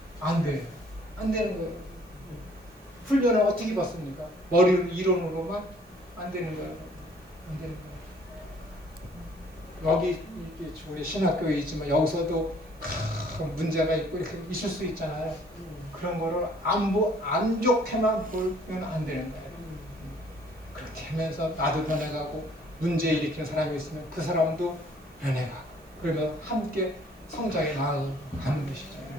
안 돼요. 안 되는 거예요. 훈련을 어떻게 받습니까? 머리 이론으로만 안 되는 거예요. 안 되는 거예요. 여기 우리 신학교에 있지만 여기서도 문제가 있고 이렇게 있을 수 있잖아요. 그런 거를 안 좋게만 보면 안 되는 거예요. 그렇게 하면서 나도 변해가고 문제 일으키는 사람이 있으면 그 사람도 변해가고 그러면 함께 성장해 나아가는 것이죠.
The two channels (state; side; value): noise; right; hiss, 29 dB below the sound